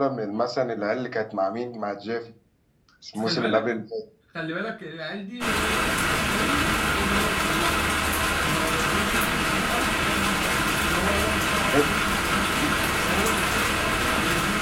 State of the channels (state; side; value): identical; both; correlation 1.00